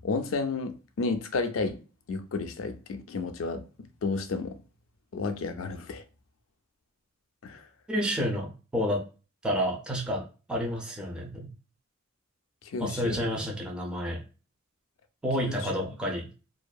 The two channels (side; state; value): both; normal; correlation 0.28